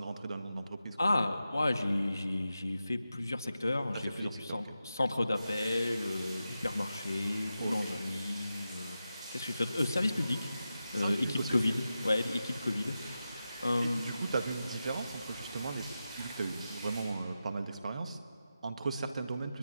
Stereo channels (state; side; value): inverted; both; correlation -0.91